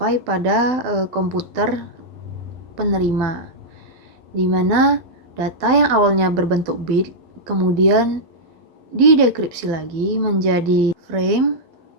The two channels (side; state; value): left; late; 12 ms